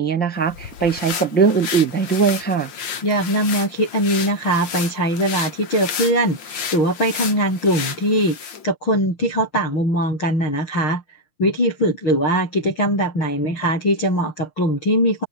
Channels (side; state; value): right; late; 5.7 ms